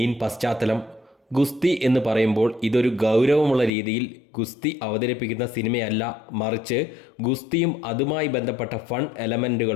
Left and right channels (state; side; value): drops out; right; at 3.7 s